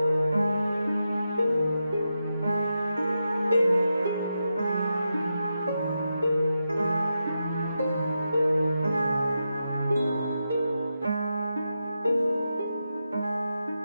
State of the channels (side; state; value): both; inverted; correlation -0.87